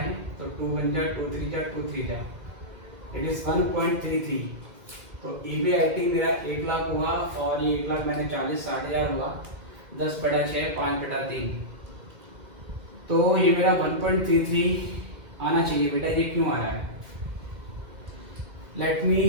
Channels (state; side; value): late; left; 1.9 ms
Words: तो 2 बन जा, 2 3 जा, 2 3 जा, इट इज़ 1.33। तो EBIT मेरा 1 लाख हुआ, और ये 1 लाख मैंने 40-60,000 हुआ, 10/6 5/3, तो ये मेरा 1.33 आना चाहिए बेटा। ये क्यों आ रहा है? Let me